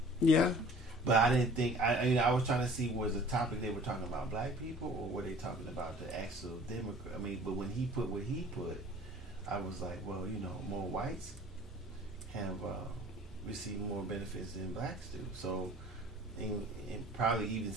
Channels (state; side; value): normal; both; correlation 0.48